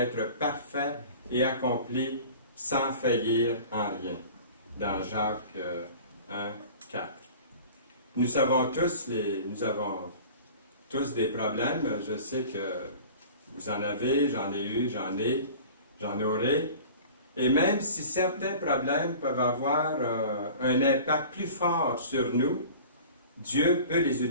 parfait et accompli sans faillir en rien. Dans Jacques 1, 4. Nous avons tous des problèmes. Je sais que vous en avez, j'en ai eu, j'en aurai. Et même si certains problèmes peuvent avoir un impact plus fort sur nous, Dieu peut les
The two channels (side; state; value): both; inverted; correlation -0.41